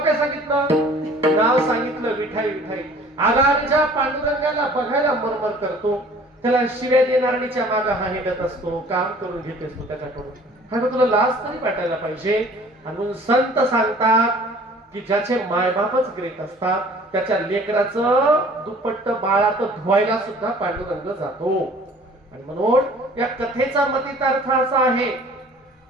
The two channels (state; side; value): normal; both; correlation 0.50